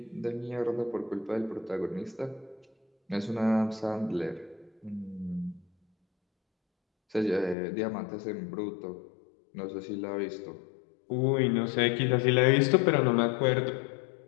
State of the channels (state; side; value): drops out; right; at 7.6 s